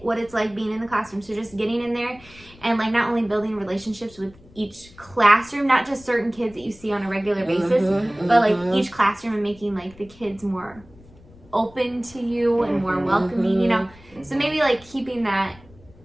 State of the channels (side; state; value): left; noise; rumble, 24 dB below the sound